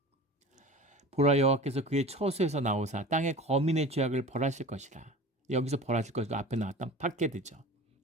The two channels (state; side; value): normal; both; correlation 0.38